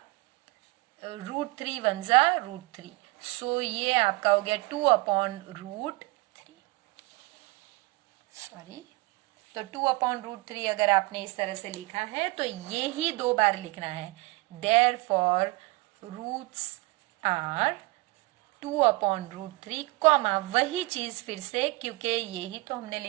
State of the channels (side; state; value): left; quieter; 23.3 dB